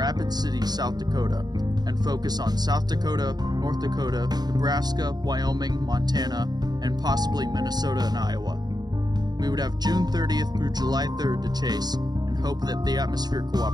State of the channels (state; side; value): late; left; 0.20 ms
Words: City, South Dakota, and focus on South Dakota, North Dakota, Nebraska, Wyoming, Montana, and possibly Minnesota and Iowa. We would have June 30th through July 3rd to chase, and hope that the atmosphere